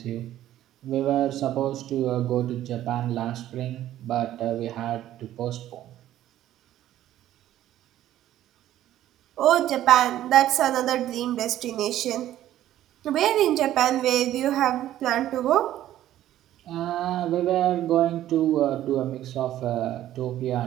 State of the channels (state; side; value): quieter; left; 12.9 dB